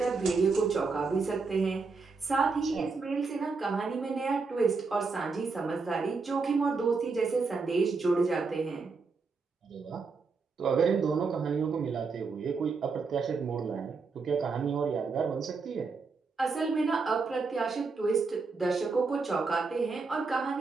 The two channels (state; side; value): quieter; left; 4.5 dB